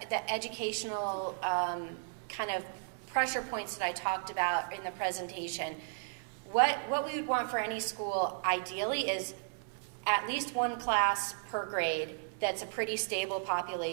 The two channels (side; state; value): left; silent; 55 dB below the other